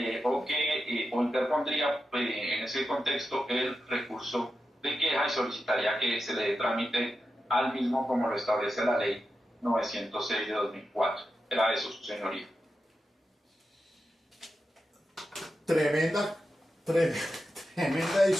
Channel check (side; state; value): both; normal; correlation 0.89